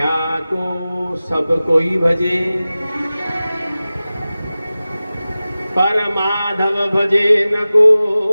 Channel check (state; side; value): inverted; both; correlation -0.96